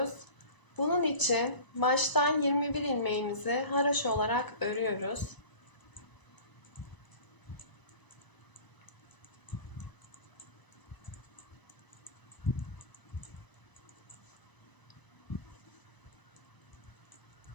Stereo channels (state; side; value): late; right; 1.0 ms